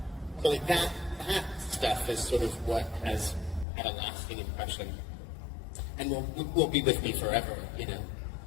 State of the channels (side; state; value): right; drops out; at 3.7 s